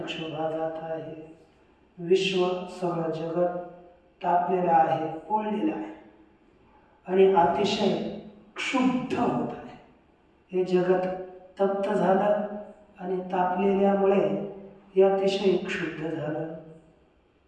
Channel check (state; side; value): identical; both; correlation 1.00